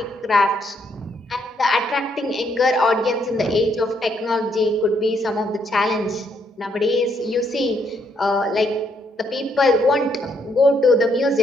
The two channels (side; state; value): both; normal; correlation 0.73